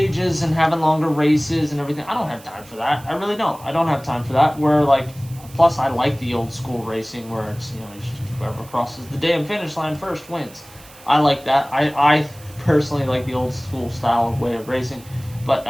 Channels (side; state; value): right; noise; hiss, 22 dB below the sound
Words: and having longer races and everything? I don't have time for that. I really don't. I don't have time for that. Where like, plus I like the old school racing where it's, you know, it's just whoever crosses the damn finish line first wins. I like that. I personally like the old school style of way of racing, but